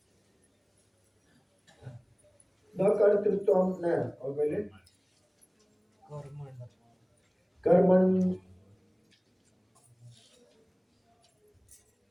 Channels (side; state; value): both; identical; correlation 1.00